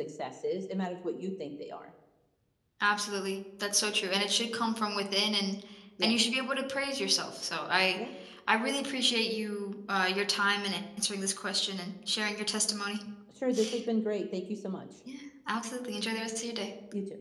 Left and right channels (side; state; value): both; identical; correlation 1.00